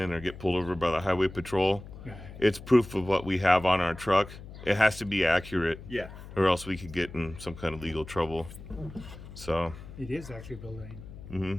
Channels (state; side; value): noise; left; hum, 14 dB below the sound